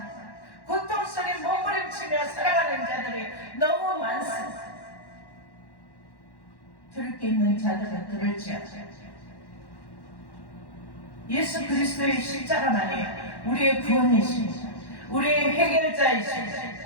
고통 속에 몸부림치며 살아가는 자들이 너무 많습니다. 들을 게 있는 자들은 들을지어다. 예수 그리스도의 십자가만이 우리의 구원이십니다. 우리의 해결자이십니다.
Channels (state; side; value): late; right; 1.1 ms